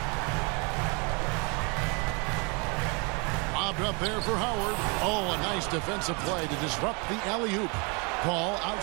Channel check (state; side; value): quieter; left; 32.1 dB